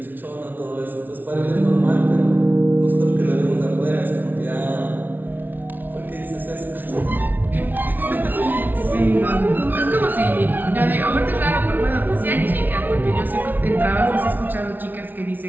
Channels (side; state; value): left; late; 0.086 ms